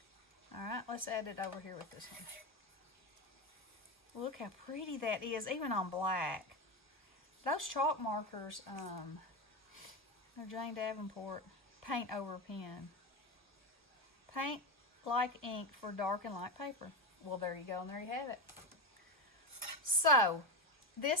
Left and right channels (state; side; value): normal; both; correlation 0.16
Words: Alright, let's add it over here with this one. Look how pretty that is, even on black. those chalk markers, they're Jane Davenport paint over pen. Paint like ink for dark and light paper. Well, there you go, and there you have it. So,